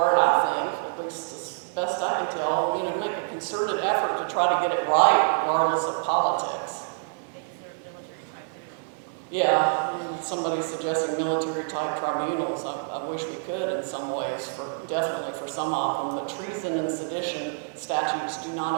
I think, at least as best I can tell, you know, make a concerted effort to try to get it right, regardless of politics. They deserve military tribunal. Yeah, somebody suggesting military-type tribunals. I wish we could in some ways, definitely for some of them. But treason and sedition statutes do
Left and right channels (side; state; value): left; silent; digital silence